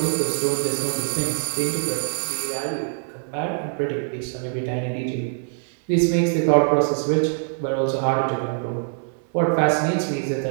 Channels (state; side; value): silent; left; 63 dB below the other